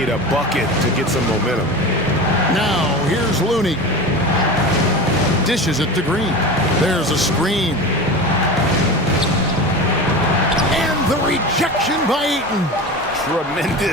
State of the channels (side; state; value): both; normal; correlation 0.29